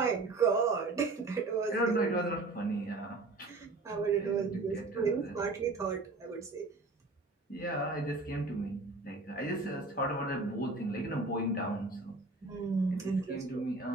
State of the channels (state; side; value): quieter; left; 3.4 dB